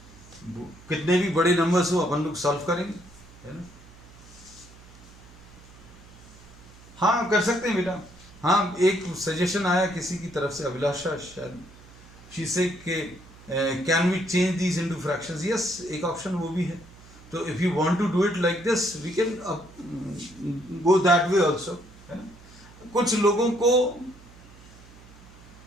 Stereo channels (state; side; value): noise; right; hum, 22 dB below the sound